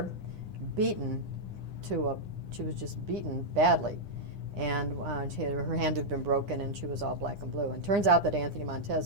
beaten she was just beaten badly. And her hand had been broken and she was all black and blue. And it turns out that Anthony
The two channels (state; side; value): late; left; 9.9 ms